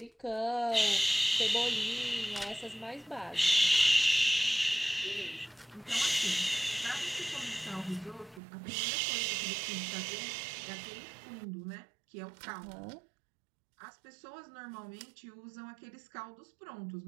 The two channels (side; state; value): left; drops out; at 8.4 s